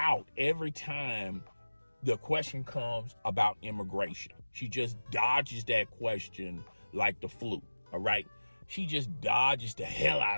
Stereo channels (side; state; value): both; inverted; correlation -1.00